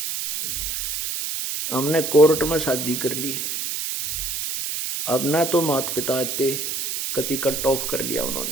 हमने कोर्ट में शादी कर ली। अब ना तो माता पिता थे, कति कट ऑफ कर लिया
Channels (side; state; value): right; noise; hiss, 3 dB below the sound